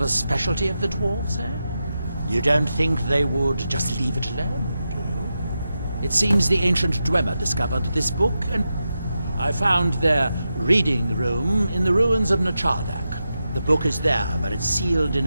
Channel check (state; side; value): inverted; both; correlation -0.89